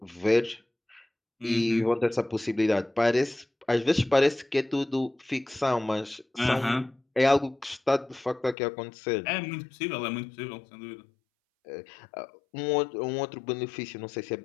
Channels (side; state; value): right; drops out; at 8.6 s